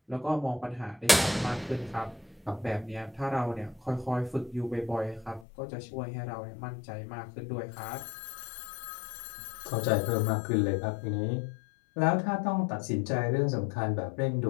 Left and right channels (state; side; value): drops out; right; at 5.5 s